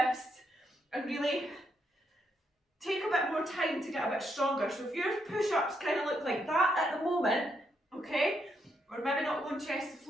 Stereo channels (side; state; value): both; normal; correlation 0.78